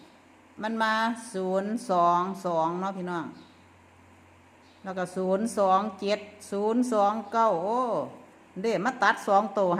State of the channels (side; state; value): both; identical; correlation 1.00